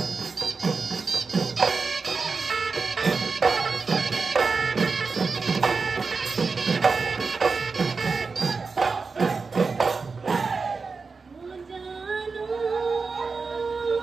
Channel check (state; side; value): quieter; left; 4.6 dB